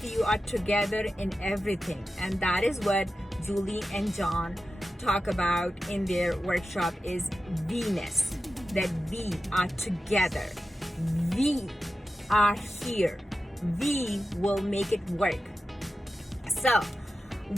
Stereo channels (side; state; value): both; normal; correlation 0.92